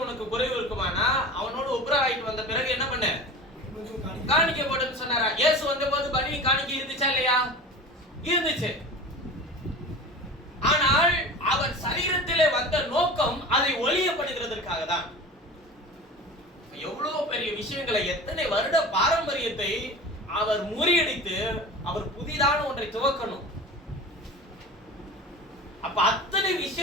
உனக்கு குறைவு இருக்குமானா அவனோடு ஒப்புரவாயிட்டு வந்த பிறகு என்ன பண்ண? காணிக்கை போட்டுன்னு சொன்னாரா? இயேசு வந்த போது பலி காணிக்கை இருந்துச்சா இல்லையா? இருந்துச்சு. ஆனால் அவர் சரீரத்திலே வந்த நோக்கம் அதை ஒளியப்படுகிறதற்காக தான். எவ்வளவு பெரிய விஷயங்களை, எத்தனை வருட பாரம்பரியத்தை அவர் முறியடித்து அவர் புதிதான ஒன்றை துவக்கணும். அப்ப அத்தனை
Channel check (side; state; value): both; normal; correlation 0.35